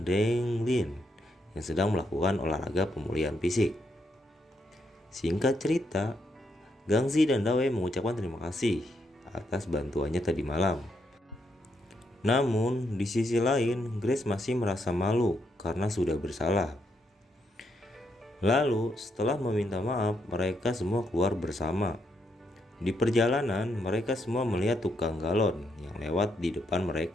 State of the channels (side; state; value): both; normal; correlation 0.79